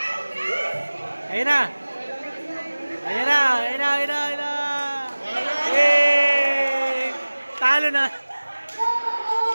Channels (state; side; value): inverted; both; correlation -1.00